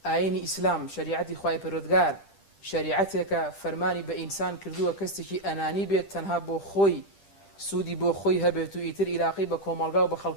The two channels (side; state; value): right; late; 10 ms